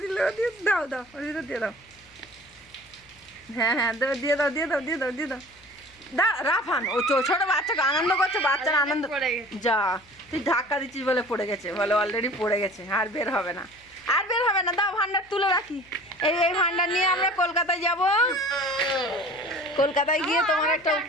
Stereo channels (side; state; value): left; noise; hum, 29 dB below the sound